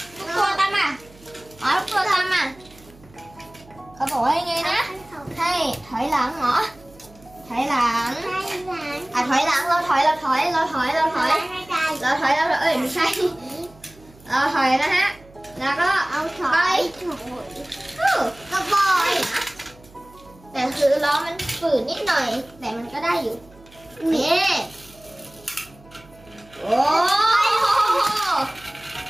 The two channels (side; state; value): right; noise; hum, 25 dB below the sound